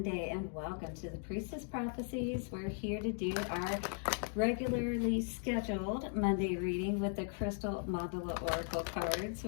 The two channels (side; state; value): right; silent; 53 dB below the other